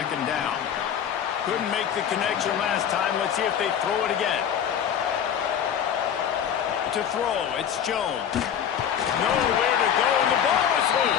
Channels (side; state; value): right; quieter; 8.8 dB